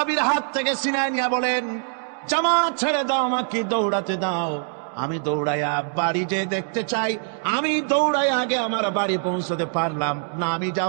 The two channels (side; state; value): left; silent; 63 dB below the other